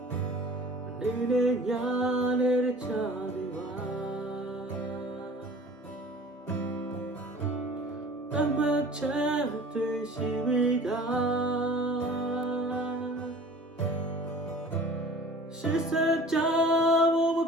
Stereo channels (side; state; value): both; normal; correlation 0.45